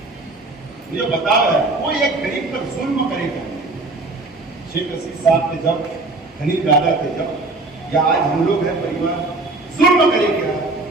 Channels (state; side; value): quieter; left; 3.2 dB